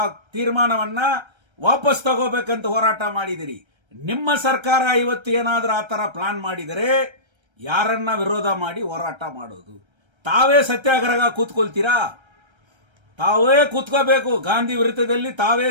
ತೀರ್ಮಾನವನ್ನ ವಾಪಸ್ ತಗೋಬೇಕಂತ ಹೋರಾಟ ಮಾಡಿದಿರಿ. ನಿಮ್ಮ ಸರ್ಕಾರ ಇವತ್ತು ಏನಾದ್ರೂ ಆ ತರ ಪ್ಲಾನ್ ಮಾಡಿದರೆ ಯಾರನ್ನ ವಿರೋಧ ಮಾಡಿ ಹೋರಾಟ ಮಾಡೋದು? ತಾವೇ ಸತ್ಯಾಗ್ರಹ ಕೂತ್ಕೊಳ್ತೀರಾ? ತಾವೇ ಕೂತ್ಕೋಬೇಕು. ಗಾಂಧಿ ವಿರುದ್ಧದಲ್ಲಿ ತಾವೇ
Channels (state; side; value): late; left; 1.3 ms